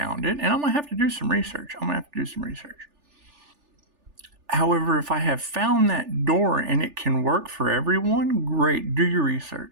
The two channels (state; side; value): late; left; 3.4 ms